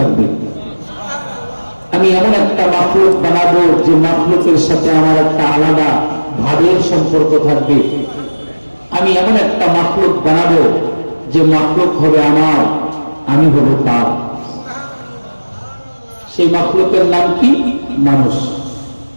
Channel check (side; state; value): both; inverted; correlation -1.00